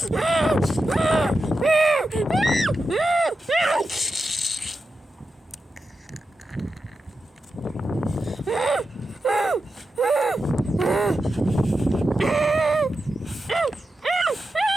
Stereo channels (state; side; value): normal; both; correlation 0.90